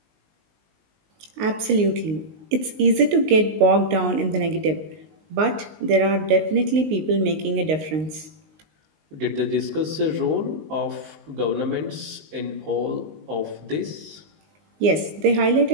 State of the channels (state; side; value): late; left; 19 ms